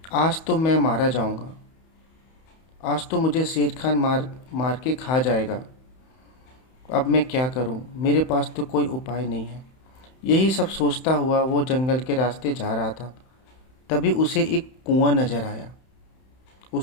आज तो मैं मारा जाऊंगा, आज तो मुझे शेर खान मार मार के खा जाएगा। अब मैं क्या करूं, मेरे पास तो कोई उपाय नहीं है। यही सब सोचता हुआ वो जंगल के रास्ते जा रहा था। तभी उसे एक कुआं नजर आया।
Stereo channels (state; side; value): late; right; 31 ms